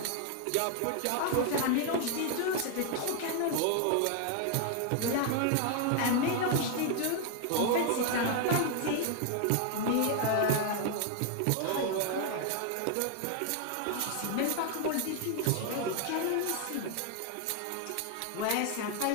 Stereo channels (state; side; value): different; both; correlation 0.00